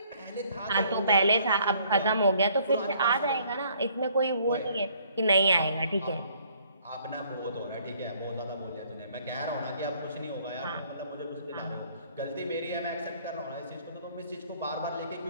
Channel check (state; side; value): inverted; both; correlation -0.62